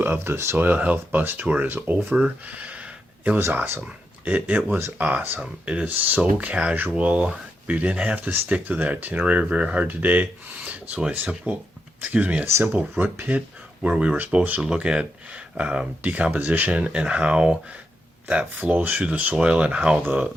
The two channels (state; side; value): normal; both; correlation 0.84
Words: of the soil health bus tour is over. It was awesome. It was awesome. It is so casual. We didn't have to stick to the itinerary very hard today. So a simple root pit where we were supposed to look at decomposition and how that flows through the soil and how